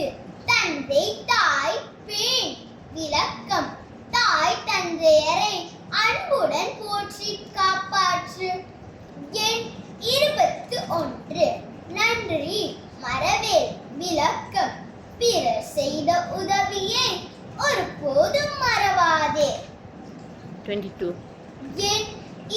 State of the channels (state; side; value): identical; both; correlation 1.00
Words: தந்தை தாய் பேண். விளக்கம்: தாய் தந்தையரை அன்புடன் போற்றி காப்பாற்று. எண் 21 நன்றி மறவேல். விளக்கம்: பிறர் செய்த உதவியை ஒருபோதும் மறவாதே. 22 எண்